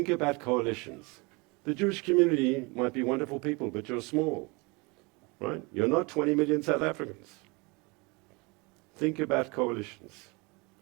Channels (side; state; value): left; quieter; 27.7 dB